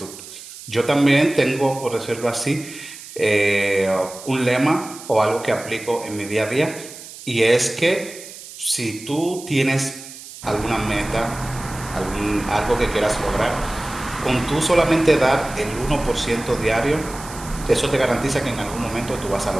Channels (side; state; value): right; noise; hiss, 15 dB below the sound